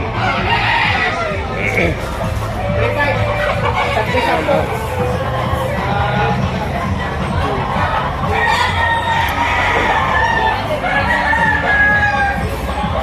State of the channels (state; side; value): identical; both; correlation 1.00